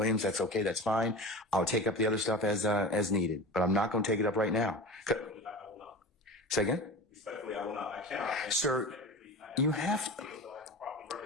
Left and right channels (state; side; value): normal; both; correlation 0.31